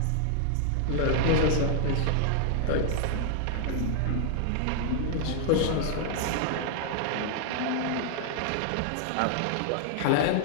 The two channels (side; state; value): both; different; correlation 0.00